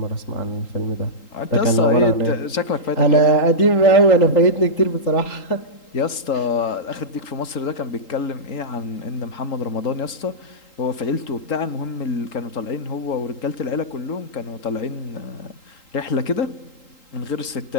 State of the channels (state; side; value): late; right; 3.8 ms